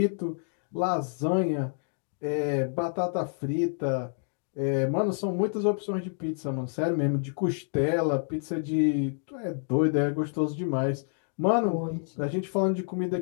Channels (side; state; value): right; silent; digital silence